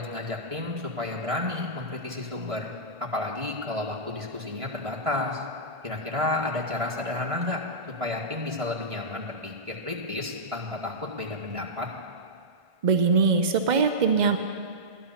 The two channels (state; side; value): late; left; 1.5 ms